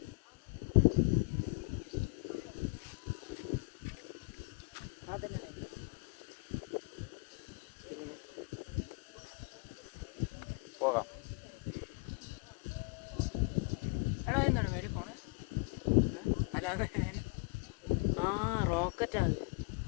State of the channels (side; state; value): right; quieter; 30.2 dB